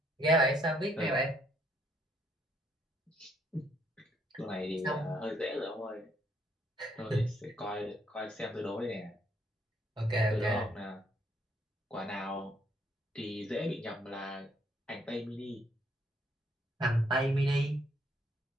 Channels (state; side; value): normal; both; correlation 0.69